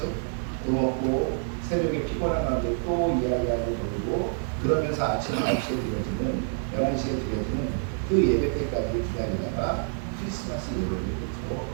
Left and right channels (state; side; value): silent; left; 60 dB below the other